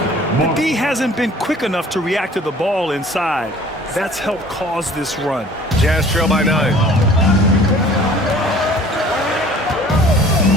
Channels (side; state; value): both; normal; correlation 0.50